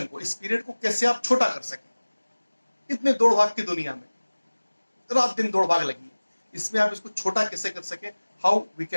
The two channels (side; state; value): both; inverted; correlation -1.00